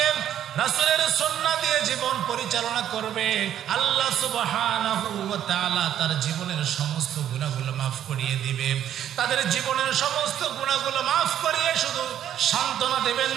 রাসূলের সুন্নাহ দিয়ে জীবন পরিচালনা করবে, আল্লাহ সুবহানাহু ওয়া তাআলা তার জীবনের সমস্ত গুনাহগুলো মাফ করিয়ে দিবে। তাদের জীবনের সমস্ত গুনাহগুলো মাফ করিয়ে শুধু সান্ত্বনা দেবেন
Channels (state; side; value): quieter; left; 10.6 dB